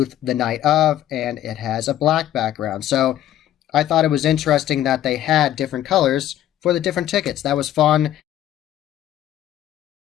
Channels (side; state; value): right; quieter; 12.3 dB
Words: the night of, and it has a black background. So I thought it was interesting that they had different colors for the different tickets. That was fun.